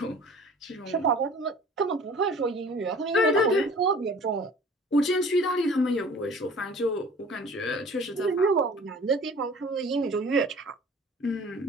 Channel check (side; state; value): both; normal; correlation 0.46